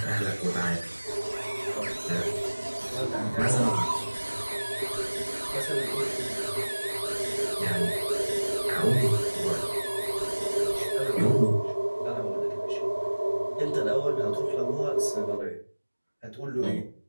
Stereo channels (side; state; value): both; inverted; correlation -1.00